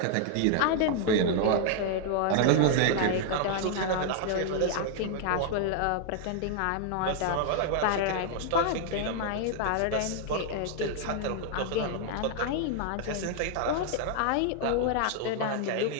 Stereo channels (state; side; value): different; both; correlation 0.00